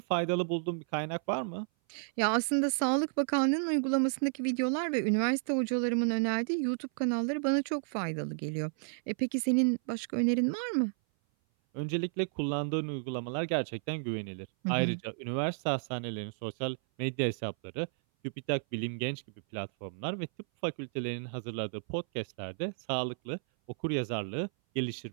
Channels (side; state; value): left; silent; 56 dB below the other